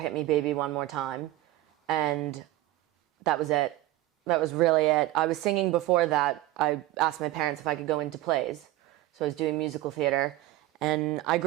Me Baby One More Time, and that was it. That was really it. I was singing before that. I asked my parents if I could go into plays, so I was doing musical theater. And I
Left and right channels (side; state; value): left; quieter; 16.2 dB